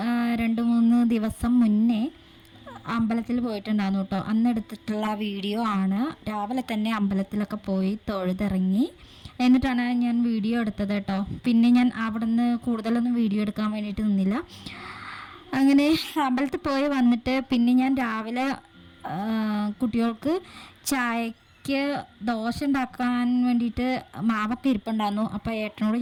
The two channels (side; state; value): both; identical; correlation 1.00